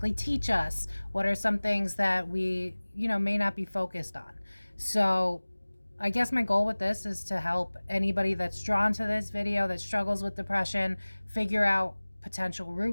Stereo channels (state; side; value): inverted; both; correlation -1.00